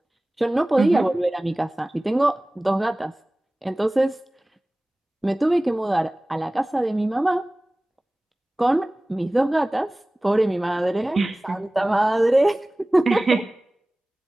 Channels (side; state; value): both; normal; correlation 0.98